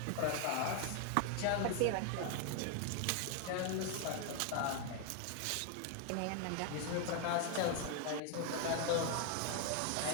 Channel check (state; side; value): different; both; correlation 0.01